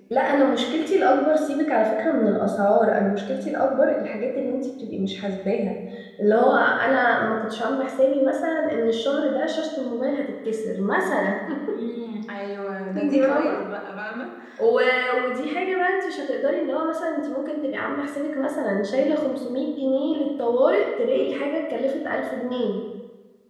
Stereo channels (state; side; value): identical; both; correlation 1.00